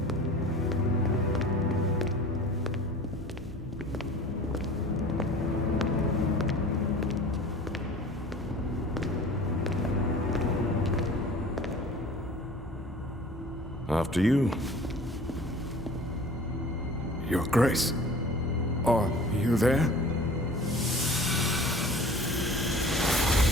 After you. Your Grace, are you there?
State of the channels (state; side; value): normal; both; correlation 0.43